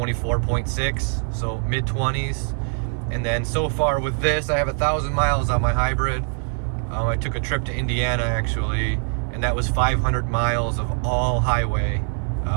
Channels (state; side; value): silent; left; 63 dB below the other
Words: so mid-20s. And then so far with this, I have 1,000 miles on my hybrid. I took a trip to Indiana actually, and that was 500 miles of all highway